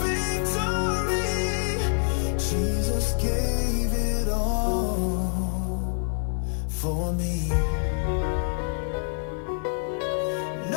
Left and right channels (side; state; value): right; silent; digital silence